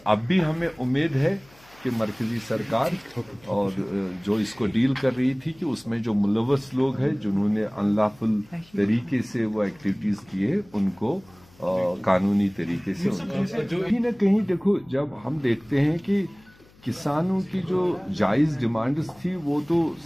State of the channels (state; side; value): noise; left; hum, 28 dB below the sound